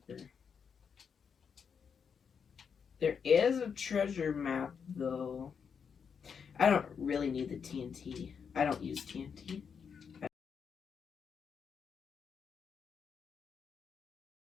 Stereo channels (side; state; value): right; quieter; 6.6 dB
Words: There is a treasure map though. I don't really need the TNT. I don't use TNT.